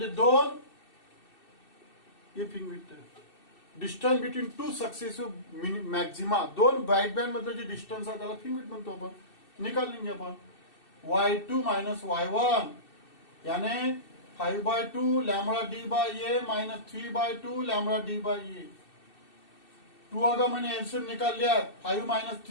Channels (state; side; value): late; right; 2.6 ms